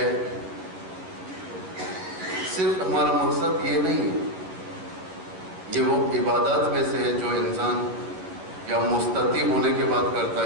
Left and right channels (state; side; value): late; left; 11 ms